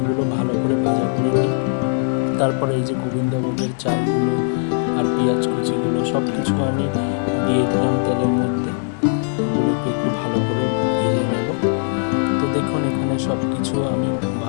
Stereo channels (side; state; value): right; silent; digital silence